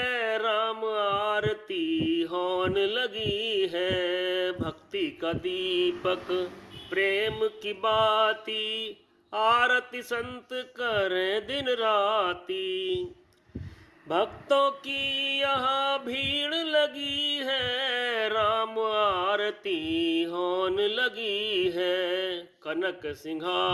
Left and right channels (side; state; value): both; identical; correlation 1.00